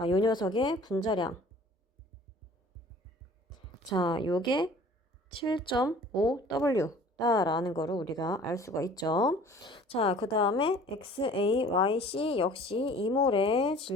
요 녀석의 분자량. 자, 요게 7.5W 라는 거를 우리가 알 수가 있죠. 자, 그 다음에 XAYC 역시 2몰의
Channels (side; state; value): both; normal; correlation 0.49